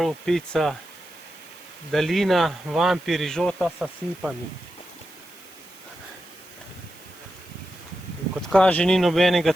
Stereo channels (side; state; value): right; noise; hiss, 23 dB below the sound